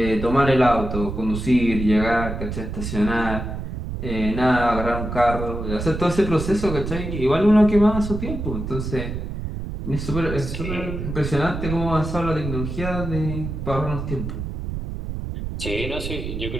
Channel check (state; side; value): noise; right; rumble, 5 dB below the sound